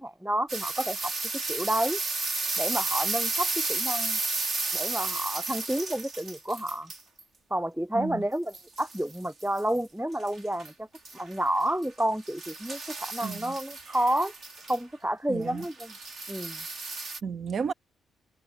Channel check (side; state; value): both; normal; correlation 0.88